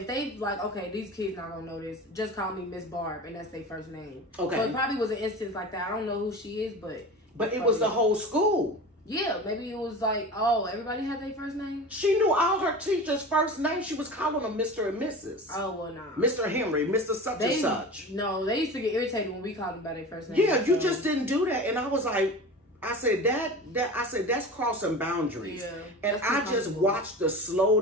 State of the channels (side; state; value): both; normal; correlation 0.33